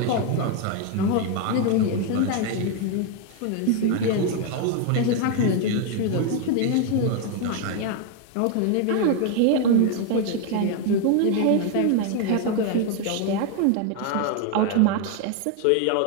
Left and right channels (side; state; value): both; different; correlation 0.01